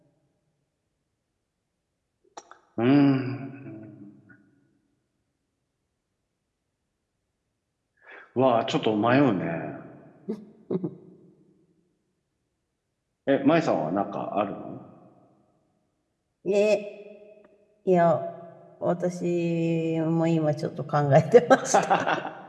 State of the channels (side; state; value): both; identical; correlation 1.00